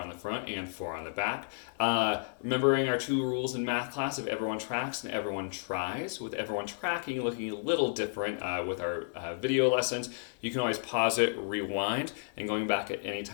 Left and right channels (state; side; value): silent; right; 56 dB below the other